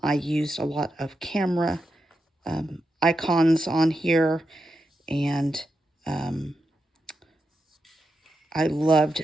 used a lot of camera icons on here, and I loved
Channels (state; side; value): normal; both; correlation 0.87